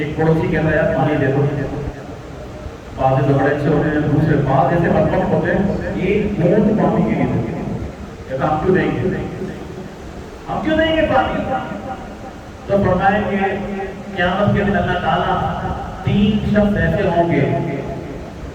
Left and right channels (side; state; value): both; identical; correlation 1.00